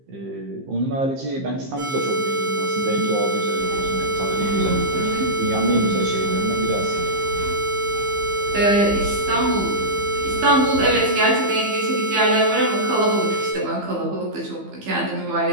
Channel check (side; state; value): left; late; 15 ms